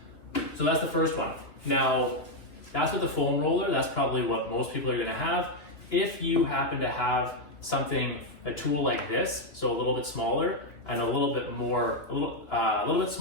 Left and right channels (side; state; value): right; late; 3.1 ms